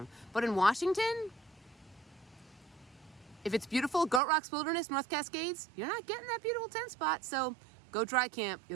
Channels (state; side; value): drops out; left; at 4.2 s